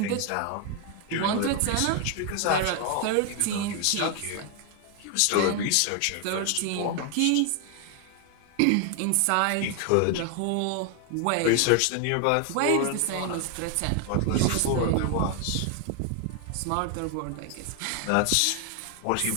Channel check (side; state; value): both; different; correlation 0.00